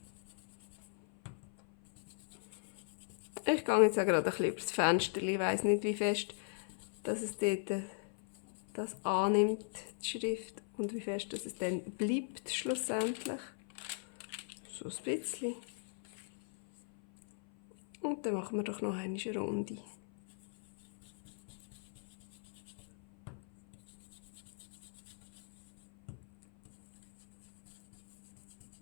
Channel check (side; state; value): right; silent; 52 dB below the other